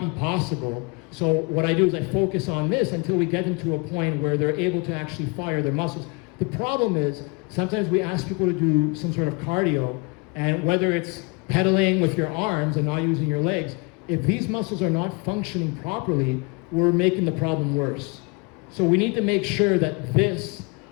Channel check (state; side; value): quieter; right; 30.3 dB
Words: be possible. So what I do is I focus on this until we get them to a point where they're able to actually fire their muscles. The problem is, sometimes we ask people to do some sort of cardio, and whether it's pedaling with your arms and not using your legs, if these muscles are not functioning properly, we're making the problem worse. So we need to make sure that these